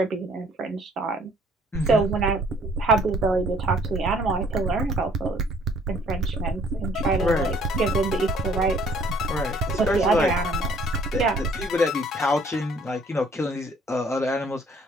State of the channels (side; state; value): both; normal; correlation 0.59